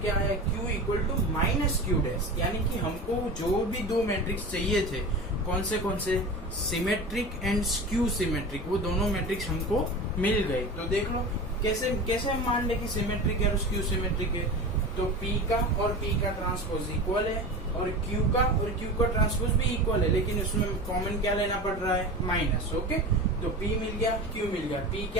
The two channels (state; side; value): normal; both; correlation 0.30